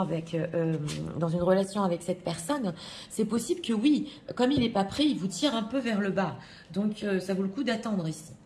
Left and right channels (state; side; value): identical; both; correlation 1.00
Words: dans une relation avec cette personne, c'est possible que oui, comme il n'est pas prêt, il vous tire un peu vers le bas. Donc, ça vaut le coup d'attendre ici.